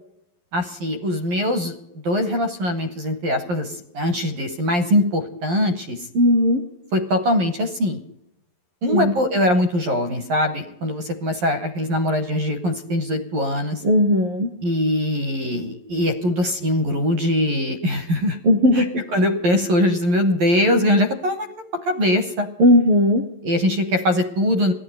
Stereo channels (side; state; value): left; late; 11 ms